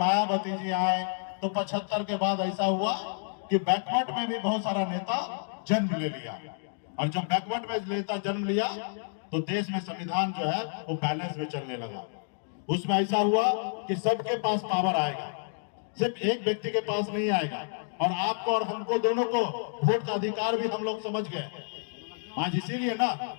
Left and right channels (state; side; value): silent; right; digital silence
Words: जी आए। तो 75 के बाद ऐसा हुआ कि बैकवर्ड में भी बहुत सारा नेता जन्म ले लिया। और जब बैकवर्ड में नेता जन्म लिया तो देश में संविधान जो है वो बैलेंस में चलने लगा। उसमें ऐसा हुआ कि सबके पास पावर आएगा, सिर्फ एक व्यक्ति के पास नहीं आएगा। और आपको और हमको दोनों को वोट का अधिकार भी हम लोग समझ गए। आज इसीलिए ना,